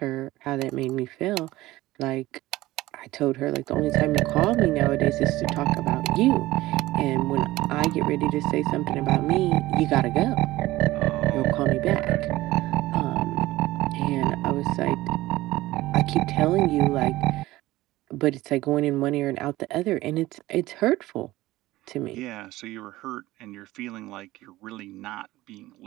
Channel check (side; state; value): left; quieter; 17.5 dB